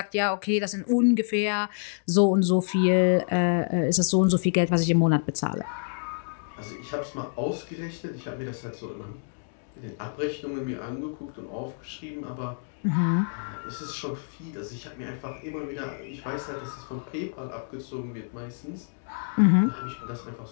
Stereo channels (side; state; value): right; silent; digital silence